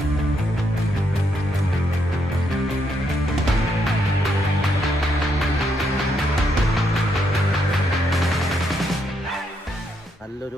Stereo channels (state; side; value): normal; both; correlation 0.77